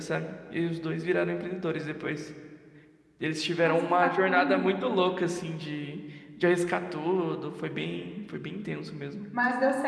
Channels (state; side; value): identical; both; correlation 1.00